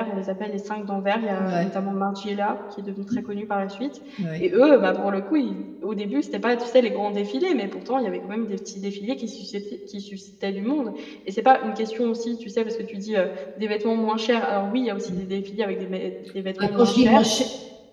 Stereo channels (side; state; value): both; identical; correlation 1.00